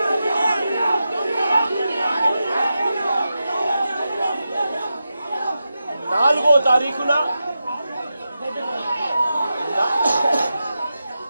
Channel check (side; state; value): both; inverted; correlation -0.90